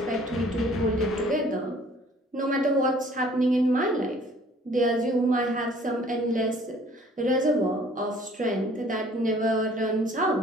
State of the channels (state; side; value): normal; both; correlation 0.55